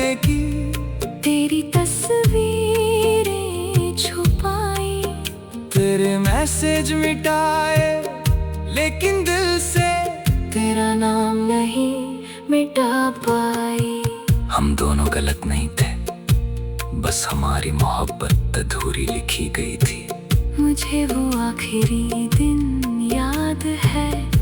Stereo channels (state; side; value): identical; both; correlation 1.00